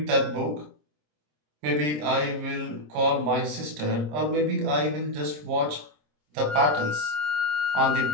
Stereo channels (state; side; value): late; left; 26 ms